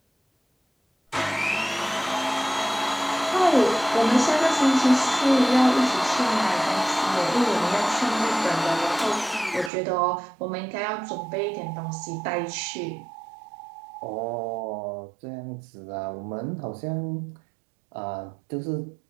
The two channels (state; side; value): drops out; left; at 9.7 s